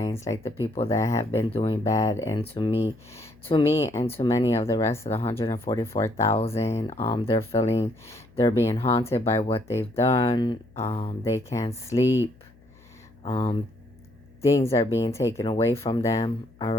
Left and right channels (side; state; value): left; noise; hum, 27 dB below the sound